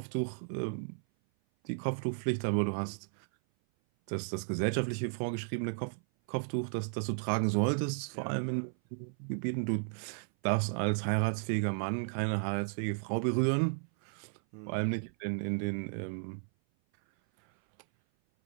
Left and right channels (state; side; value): silent; left; 55 dB below the other